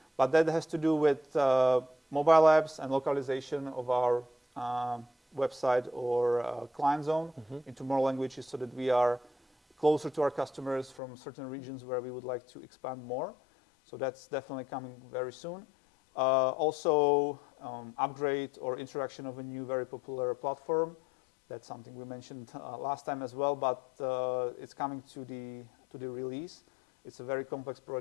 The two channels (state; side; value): drops out; right; at 11.0 s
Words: but that has to do with mobile apps and localization of our website or client zone into more languages, so that we are closer to our customers from certain regions where we would like to expand more. So that's definitely coming very soon. Also, upgrade or introduction of a new very popular platform. That's something we mentioned last time as well, but it's coming to the release. It's a very complex